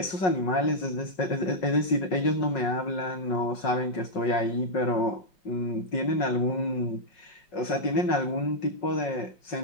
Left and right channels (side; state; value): right; late; 5.4 ms